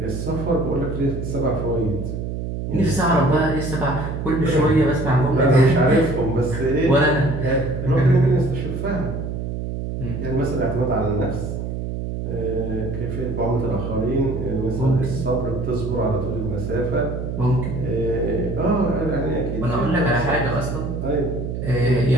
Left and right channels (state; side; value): noise; right; hum, 4 dB below the sound